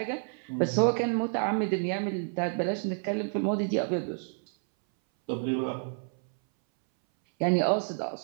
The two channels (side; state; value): left; silent; 58 dB below the other